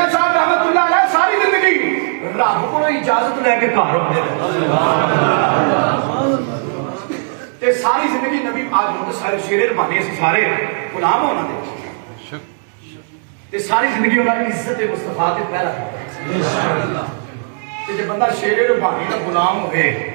صاحب رحمت اللہ علیہ ساری زندگی رب کو اجازت لے کے گھر ہوتے ساری زندگی نبی آج شیر ربانی اسی سارے غلام ہونا دے ساری زندگی انہوں نے عزت مصطفیٰ کے پہرا جب بندہ شیر ربانی کا غلام ہوئے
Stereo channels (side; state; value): left; silent; digital silence